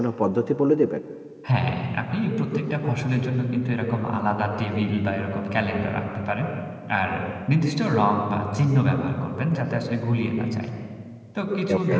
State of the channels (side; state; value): both; identical; correlation 1.00